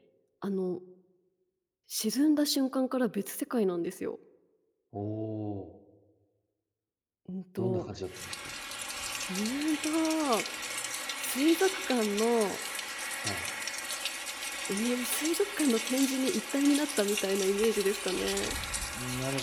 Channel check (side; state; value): both; identical; correlation 1.00